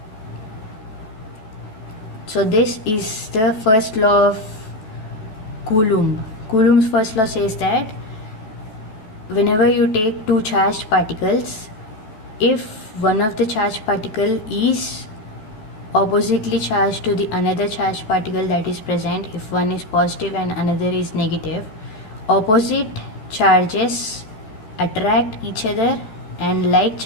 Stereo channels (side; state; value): right; late; 14 ms